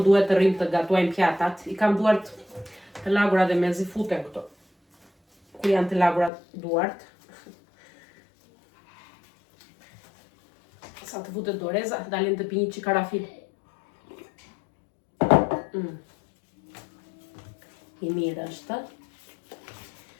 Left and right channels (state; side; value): drops out; right; at 6.3 s